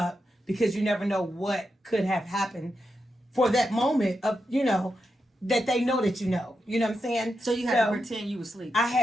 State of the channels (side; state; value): both; normal; correlation 0.87